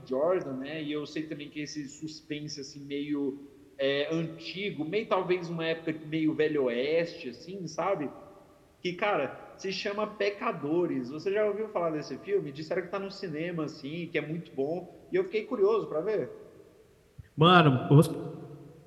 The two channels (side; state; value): both; identical; correlation 1.00